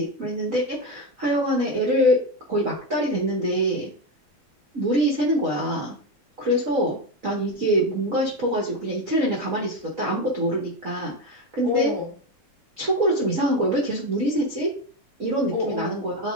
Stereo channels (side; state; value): both; normal; correlation 0.13